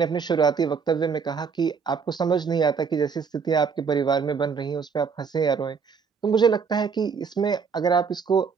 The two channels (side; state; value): left; quieter; 5.9 dB